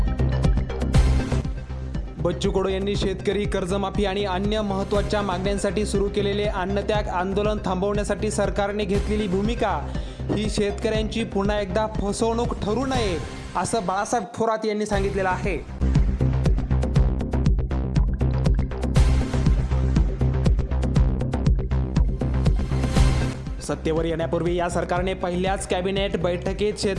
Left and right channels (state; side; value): identical; both; correlation 1.00